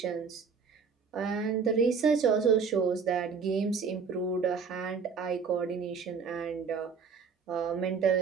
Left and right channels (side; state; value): left; quieter; 5.6 dB